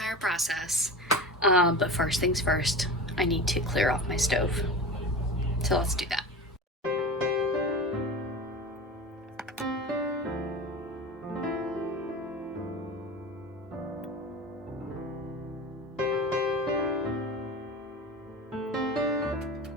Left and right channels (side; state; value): both; normal; correlation 0.30